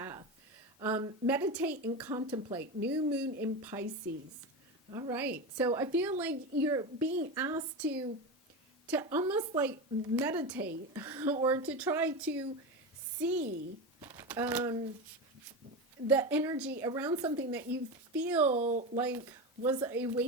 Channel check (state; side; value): normal; both; correlation 0.20